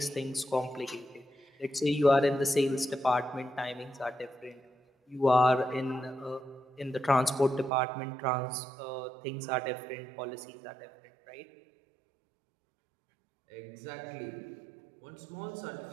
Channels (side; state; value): left; drops out; at 7.7 s